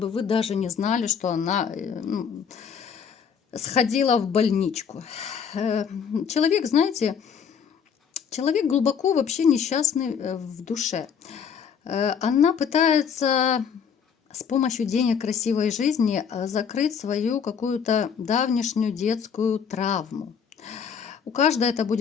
вы даже не знали, что она, ну, сходила в больничку. Человек, знаете, человек глубоко вообще несчастный в душе. Она пытается с помощью денег, красивой жизни закрыть свою какую-то давнишнюю детскую травму. У каждой это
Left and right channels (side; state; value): right; quieter; 7.1 dB